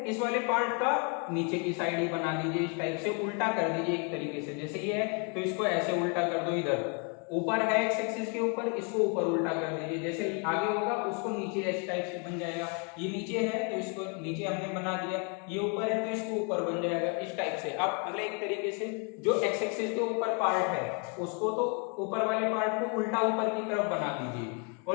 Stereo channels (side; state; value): right; quieter; 36.9 dB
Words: इस वाले पार्ट का नीचे की साइड ही बना दीजिए इस टाइप से, उल्टा कर दीजिए एक तरीके से, जैसे ये है तो इसको ऐसे उल्टा कर दो, इधर ऊपर है एक्स एक्सिस के ऊपर, इसको ऊपर उल्टा कर दीजिए, जैसे आगे होगा उसको नीचे इस टाइप से बन जाएगा, ये नीचे है तो इसको नीचे हमने बना दिया, ये ऊपर है तो इसको ऊपर बन जाएगा इस टाइप से। अब मतलब एक तरीके से जो एक्स एक्सिस के ऊपर पार्ट है उसको तो ऊपर वाले पार्ट को उल्टा ऊपर की तरफ बना दीजिए